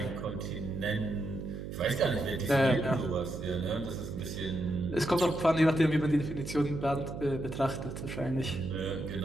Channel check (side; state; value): right; noise; hum, 8 dB below the sound